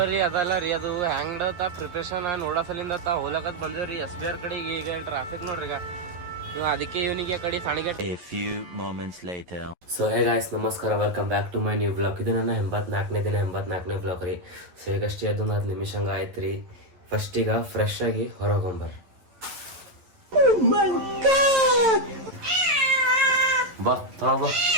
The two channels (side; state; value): left; late; 11 ms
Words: ಅದಲ್ಲ ರೀ, ಅದು ಹ್ಯಾಂಗ್ಡತ್ತ ಪ್ರಿಪ್ರೇಷನ್ ನೋಡಸಲಿಂದ ಹೋಲಕತ್ ಬಂದೇವ್ರಿ SBR ಕಡೆಗೆ. ಈಗ ಟ್ರಾಫಿಕ್ ನೋಡ್ರಿ, ಈಗ ಅದಕ್ಕೆ ಇವನಿಗೆ ಕಡೆ ಸಾಣಿಗೆ. ಸೊ ಹೇ ಗಾಯ್ಸ್, ನಮಸ್ಕಾರ, welcome back to my new blog. ಇದು ನನ್ನ 84ನೇ ಬ್ಲಾಗ್ ರೀ. ಸೊ ಈಗಷ್ಟೇ ಅದೊಂದು 10 ನಿಮಿಷ ಹಂಗೆ ಆಯ್ತು ರೀ. ಫಸ್ಟ್ ಈಗ ಫ್ರೆಶ್ ಆಗಿ ಹೊರಗೊಂಬರ್ ಬಾ ತೊಳ ಬಾ.